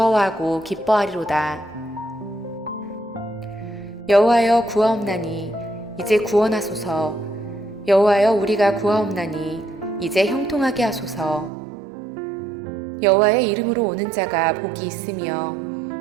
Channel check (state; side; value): drops out; left; at 11.5 s